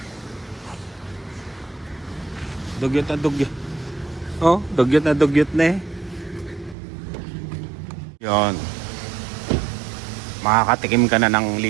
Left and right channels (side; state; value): left; drops out; at 6.8 s